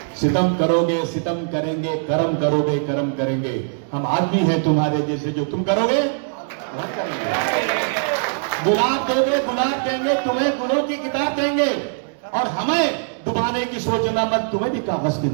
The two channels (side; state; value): left; silent; digital silence